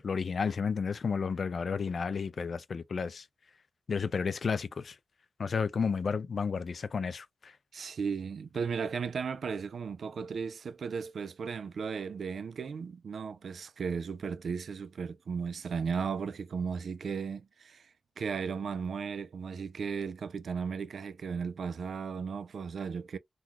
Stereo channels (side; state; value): both; normal; correlation 0.82